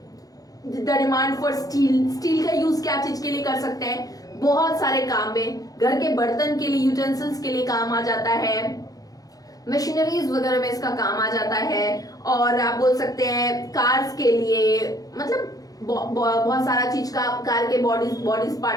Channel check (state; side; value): late; right; 0.18 ms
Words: the demand for steel का यूज क्या चीज के लिए कर सकते हैं, बहुत सारे काम में, घर के बर्तन के लिए, यूटेंसिल्स के लिए काम आ जाता है, मशीनरीज वगैरह में इसका काम आ जाता है, और आप बोल सकते हैं कार्स के लिए, मतलब बहुत सारा चीज का, कार के बॉडीज